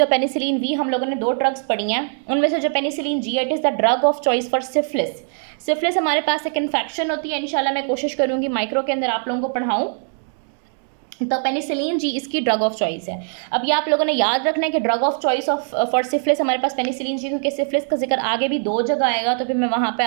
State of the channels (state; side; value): silent; left; 60 dB below the other